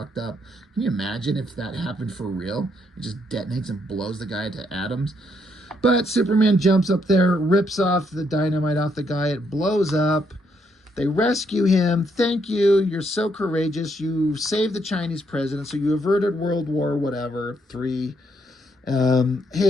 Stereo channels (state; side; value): normal; both; correlation 0.74